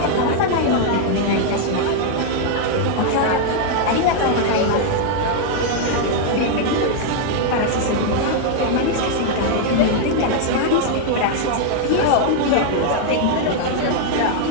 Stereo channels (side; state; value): both; different; correlation 0.00